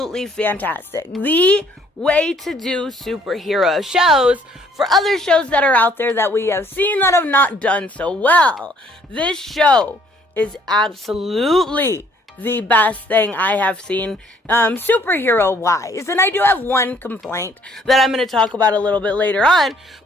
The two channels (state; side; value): normal; both; correlation 0.62